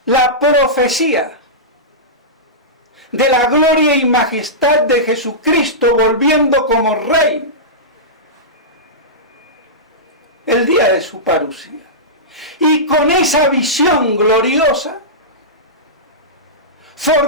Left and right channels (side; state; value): both; normal; correlation -0.16